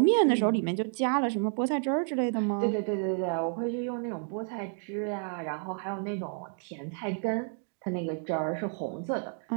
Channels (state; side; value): silent; left; 58 dB below the other